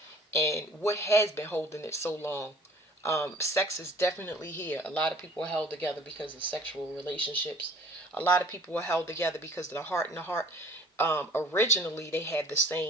and what has been holding it so long. Sex is definitely here. A lot of people are held together because of sexual relationships. A lot of people are held together because of the heart and the heart. Originally they had the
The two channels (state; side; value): normal; both; correlation 0.51